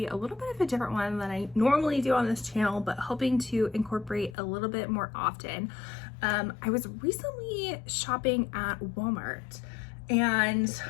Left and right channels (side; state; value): right; drops out; at 4.4 s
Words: a little bit of a different one than I normally do on this channel, but hoping to incorporate a little bit more often. I was recently shopping at Walmart and